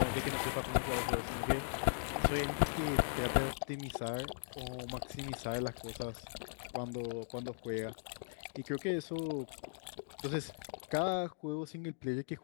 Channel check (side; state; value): right; silent; digital silence